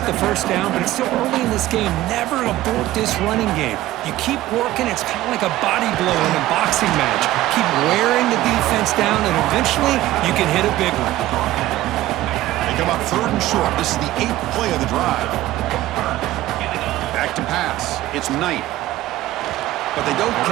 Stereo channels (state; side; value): quieter; left; 15.6 dB